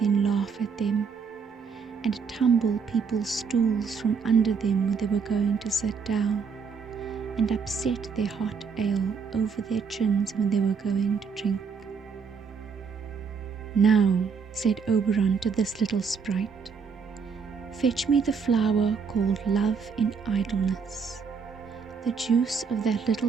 laugh at them, and tumble people's stools from under them when they were going to sit down, and upset their hot ale over their chins when they were going to drink. "Now," said Oberon to this little sprite, "fetch me the flower called Love in Idleness. The juice of that little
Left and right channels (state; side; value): quieter; left; 5.8 dB